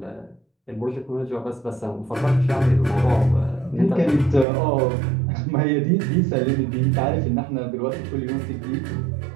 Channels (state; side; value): drops out; left; at 4.5 s